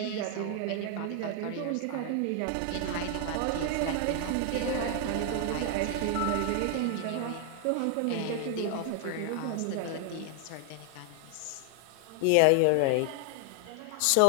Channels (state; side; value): different; both; correlation 0.00